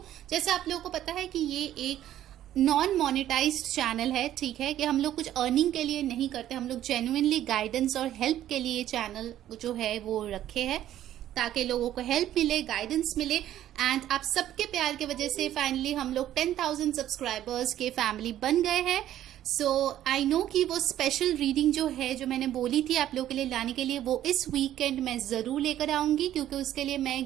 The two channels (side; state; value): left; quieter; 12.3 dB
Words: जैसे आप लोगों को पता है कि ये एक नॉन मोनेटाइज्ड चैनल है, ठीक है, कि हम लोग कुछ अर्निंग के लिए नहीं करते, हम लोग जेन्युइनली गाइडेंस और हेल्प के लिए चैनल जो है वो रखे हैं ताकि लोगों को हेल्प मिले, गाइडेंस मिले। एंड आप सबके प्यार की वजह से फाइनली हम लोग 10,000 सब्सक्राइबर्स के फैमिली बन गए हैं। सो आई नो कि वो स्पेशल रीडिंग जो है, जो मैंने बोली थी आप लोगों के लिए लाने के लिए, वो इस वीकेंड मैं जरूर लेकर आऊंगी, क्योंकि उसके लिए मैं